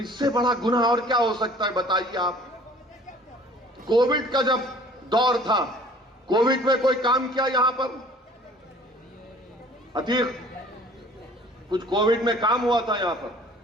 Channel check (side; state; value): both; normal; correlation 0.51